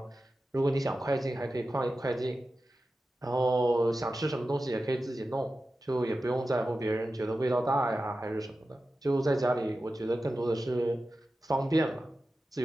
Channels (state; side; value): normal; both; correlation 0.93